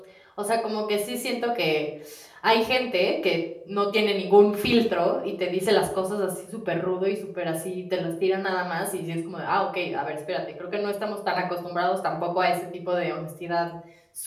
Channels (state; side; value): identical; both; correlation 1.00